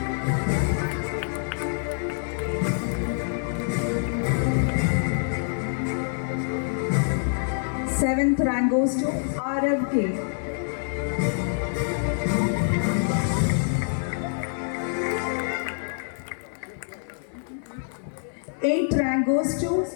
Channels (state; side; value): silent; right; digital silence